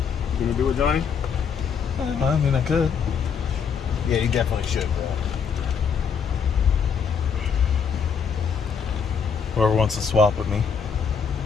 You gonna do it, Johnny? I mean, I could. Yeah, you definitely should, bro. Whoever wants to swap with me.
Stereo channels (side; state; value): right; quieter; 6.5 dB